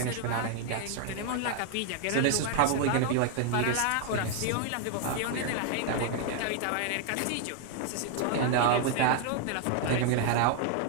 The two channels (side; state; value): both; different; correlation 0.00